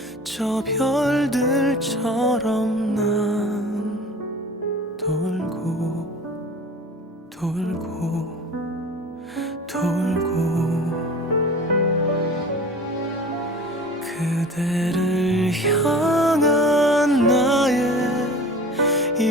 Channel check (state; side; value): normal; both; correlation 0.41